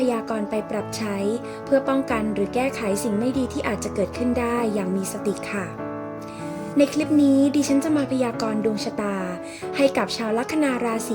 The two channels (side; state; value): both; identical; correlation 1.00